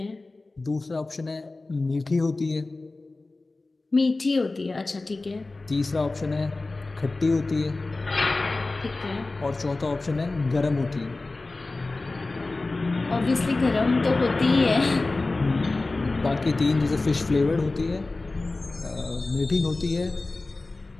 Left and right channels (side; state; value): right; quieter; 3.3 dB